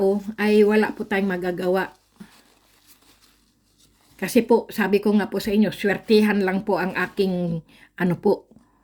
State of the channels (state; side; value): identical; both; correlation 1.00